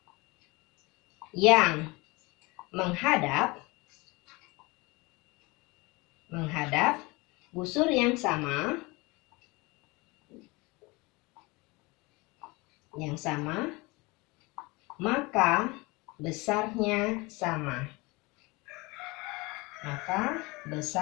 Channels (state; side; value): quieter; right; 24.7 dB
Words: yang menghadap busur yang sama, maka besarnya sama. Maka